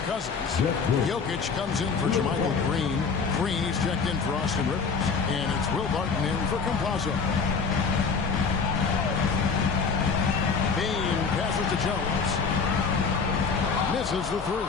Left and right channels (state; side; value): quieter; right; 5.3 dB